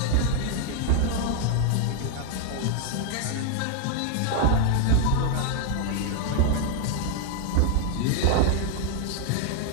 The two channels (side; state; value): both; different; correlation 0.00